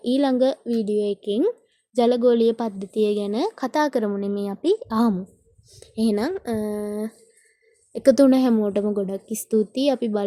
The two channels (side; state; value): both; identical; correlation 1.00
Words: ඊළඟ වීඩියෝ එකෙන් ජලගෝලීය පද්ධතිය ගැන කතා කරමු නෙමෙයි අපි ආමු. එහෙනම් එකතු වුණ හැමෝටම ගොඩක් ස්තුතියි. අපි